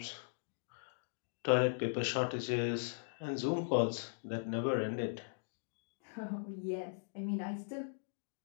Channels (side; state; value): right; silent; digital silence